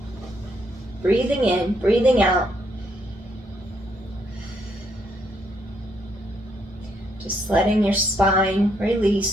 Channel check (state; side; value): normal; both; correlation 0.74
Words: Breathing in, breathing out. Just letting your spine